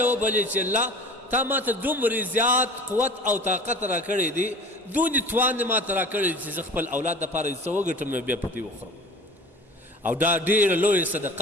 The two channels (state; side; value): normal; both; correlation 0.40